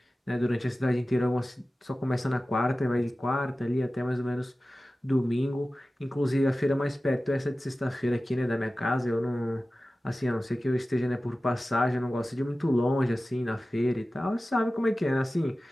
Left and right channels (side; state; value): both; normal; correlation 0.96